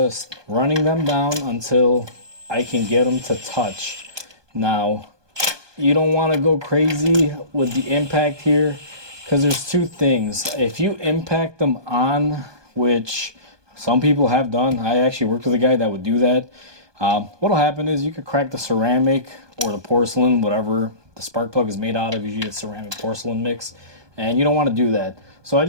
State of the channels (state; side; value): late; left; 1.2 ms